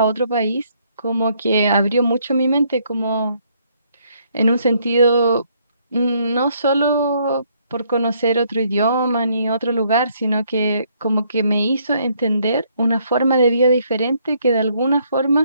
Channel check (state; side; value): inverted; both; correlation -0.69